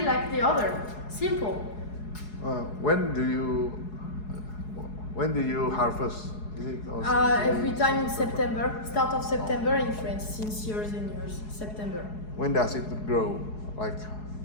like the other. Simple. When do you harvest? Is it also Every time in September, start of September in France, since years and years. September. When does it grow? Like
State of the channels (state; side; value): late; right; 4.7 ms